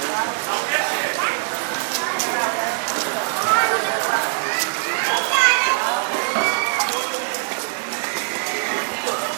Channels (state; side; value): silent; left; digital silence